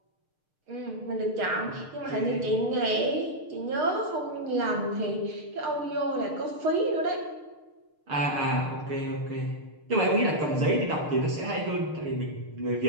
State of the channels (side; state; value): left; late; 6.6 ms